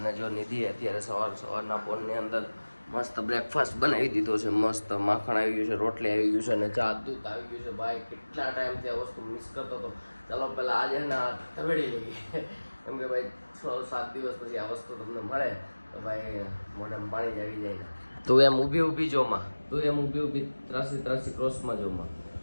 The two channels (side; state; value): both; inverted; correlation -1.00